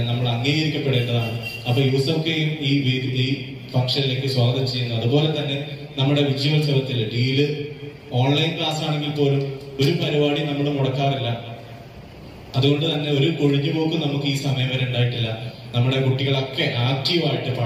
നമ്മൾ അംഗീകരിക്കപ്പെടേണ്ടതാണ്. അപ്പൊ യൂസഫ് കെയും ഈ ഫംഗ്ഷനിലേക്ക് സ്വാഗതം ചെയ്യുന്നു. അതുപോലെ തന്നെ നമ്മുടെ വിജയോത്സവത്തിൽ ഡീല് ഓൺലൈൻ ക്ലാസ് ആണെങ്കിൽ പോലും ഒരു പരിപാടി നമ്മൾ മുടക്കാറില്ല. അതുകൊണ്ട് തന്നെ ഒരു കൊഴിഞ്ഞുപോക്കും നമുക്ക് ഈ സമയം വരെ ഉണ്ടായിട്ടില്ല. നമ്മുടെ കുട്ടികളൊക്കെ ആക്റ്റീവായിട്ട്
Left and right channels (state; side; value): identical; both; correlation 1.00